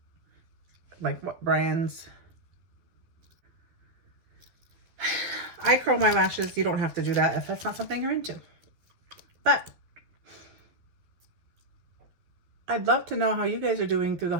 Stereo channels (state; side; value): late; left; 12 ms